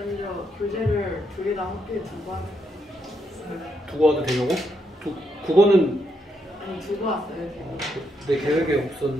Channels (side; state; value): both; normal; correlation 0.79